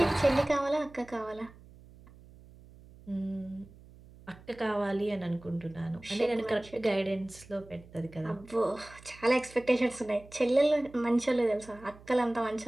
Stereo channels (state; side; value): noise; right; hum, 22 dB below the sound